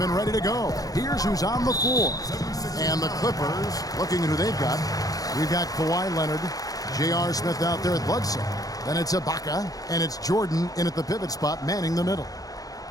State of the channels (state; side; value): late; right; 0.18 ms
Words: ready to go. Here's who's on the floor. And the Clippers, looking at who they've got. We've got Kawhi Leonard, J.R. Smith out there at Bledsoe. Then it's Ibaka, and it's Jordan in at the pivot spot, manning the middle.